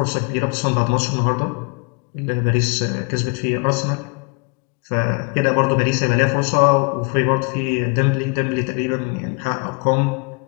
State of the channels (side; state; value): right; quieter; 33.5 dB